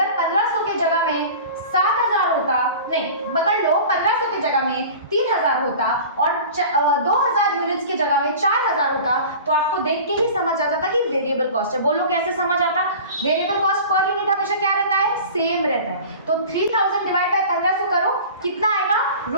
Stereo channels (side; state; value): both; inverted; correlation -0.38